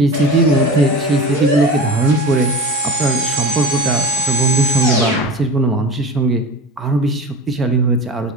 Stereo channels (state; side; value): normal; both; correlation 0.32